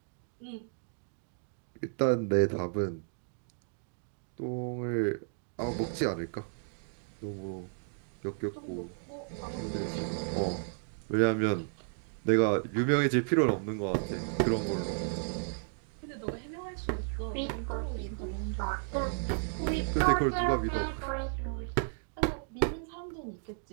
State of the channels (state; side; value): silent; left; digital silence